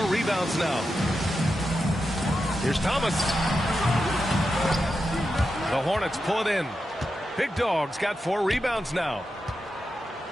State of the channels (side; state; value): both; normal; correlation 0.89